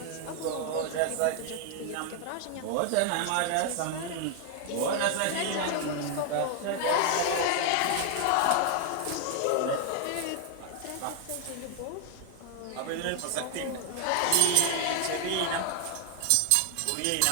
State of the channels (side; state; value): both; different; correlation 0.00